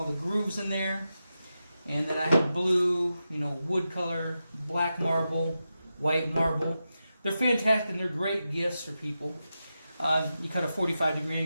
the grooves in there. And then I have blue, wood color, black marble, white marble. They're fantastic and they're great gifts for people. You cut a 45-degree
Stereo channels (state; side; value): inverted; both; correlation -0.90